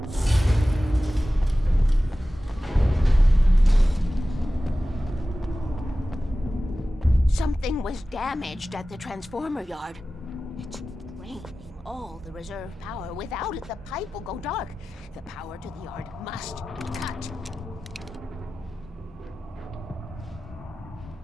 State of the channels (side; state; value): both; normal; correlation 0.95